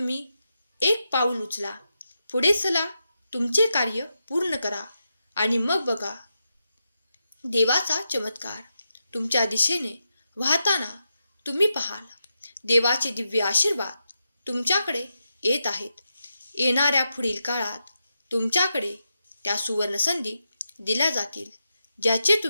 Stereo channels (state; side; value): inverted; both; correlation -0.87